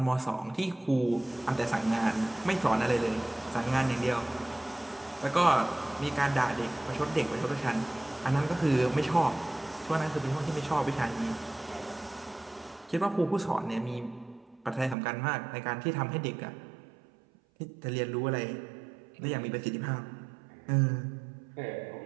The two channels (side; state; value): left; drops out; at 15.0 s